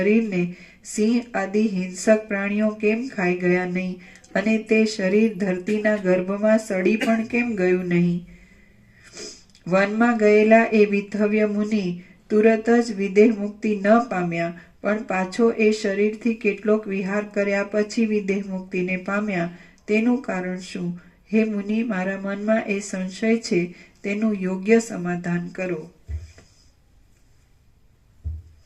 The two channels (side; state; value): both; identical; correlation 1.00